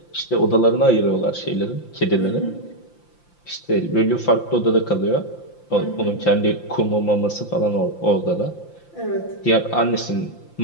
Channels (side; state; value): right; late; 5.8 ms